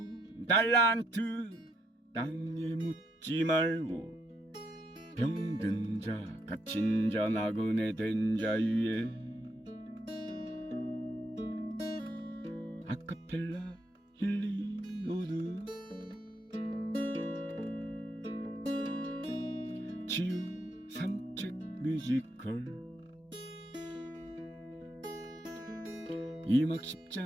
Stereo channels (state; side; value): normal; both; correlation 0.76